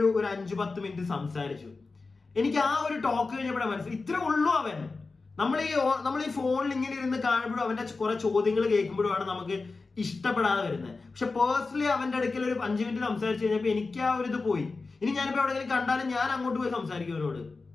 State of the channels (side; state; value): right; quieter; 3.9 dB